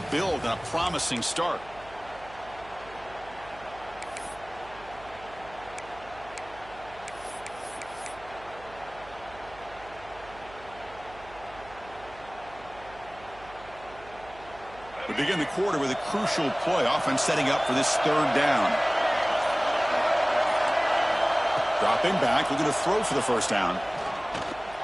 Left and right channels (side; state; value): right; noise; hum, 20 dB below the sound